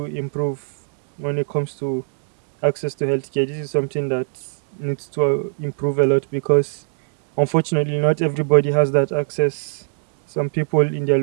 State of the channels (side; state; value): left; silent; digital silence